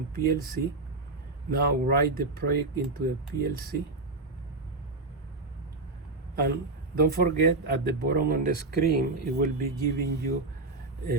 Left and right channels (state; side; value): quieter; left; 3.4 dB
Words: PLC. Now write the project into the PLC. And don't forget, at the bottom on the screen, it will be giving you